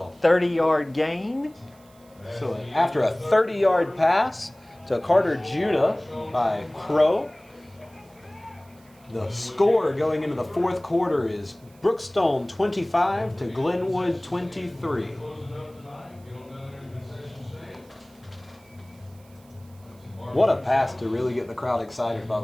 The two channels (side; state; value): right; noise; hiss, 29 dB below the sound